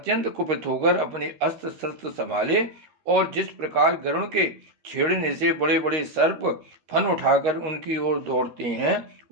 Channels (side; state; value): left; late; 13 ms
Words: कुपित होकर अपने अस्त्र शस्त्र संभाले, और जिस प्रकार गरुड़ के छेड़ने से बड़े बड़े सर्प फन उठाकर उनकी ओर दौड़ते हैं,